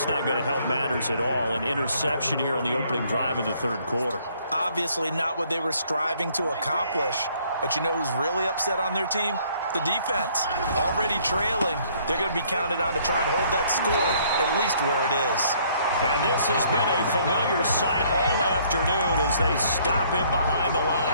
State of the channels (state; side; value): inverted; both; correlation -0.63